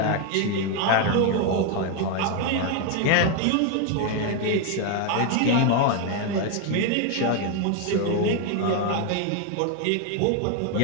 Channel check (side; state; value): both; different; correlation 0.01